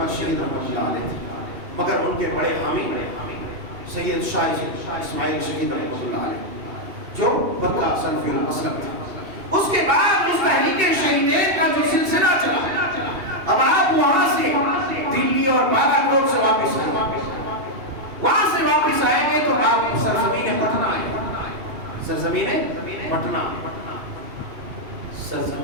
شہید رحمۃ اللہ علیہ تھے، مگر ان کے بڑے حامی سید شاہ اسماعیل شہید رحمۃ اللہ علیہ جو مکہ سلفی المسلک تھے۔ اس کے بعد اس تحریک شہیدین کا جو سلسلہ چلا، اب آپ وہاں سے دلی اور بالا کوٹ سے واپس آئیں، وہاں سے واپس آئیں گے تو آپ سرزمین پٹنہ آئیں گے، سرزمین پٹنہ،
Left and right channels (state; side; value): late; left; 2.7 ms